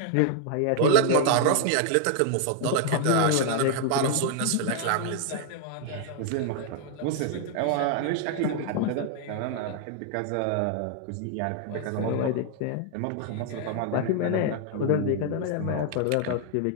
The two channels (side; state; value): both; different; correlation 0.00